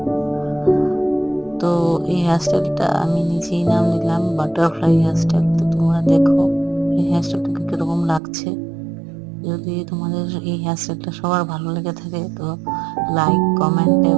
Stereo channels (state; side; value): drops out; left; at 8.2 s